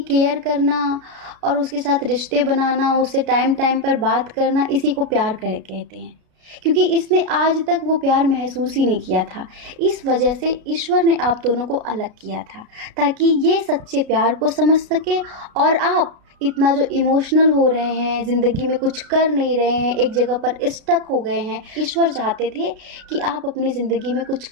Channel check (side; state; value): left; late; 33 ms